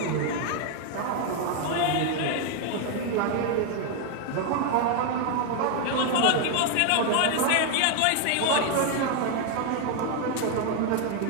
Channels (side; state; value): both; different; correlation 0.01